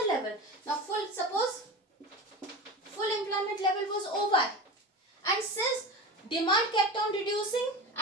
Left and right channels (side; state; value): both; normal; correlation 0.29